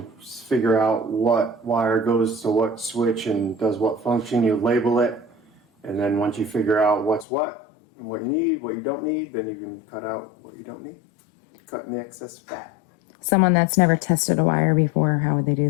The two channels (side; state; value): right; drops out; at 7.2 s